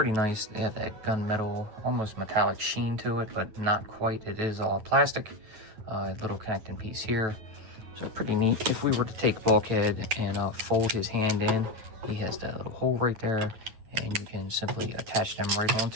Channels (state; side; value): late; left; 9.2 ms